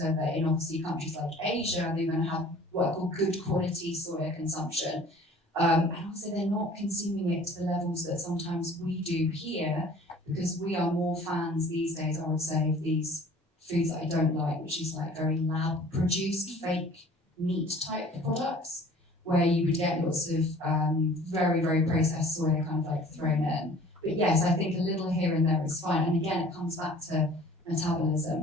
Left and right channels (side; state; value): both; normal; correlation 0.49